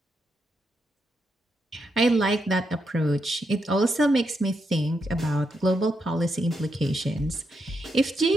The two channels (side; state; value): both; normal; correlation 0.82